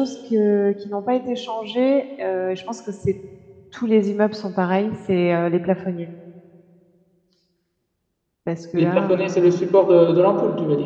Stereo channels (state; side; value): identical; both; correlation 1.00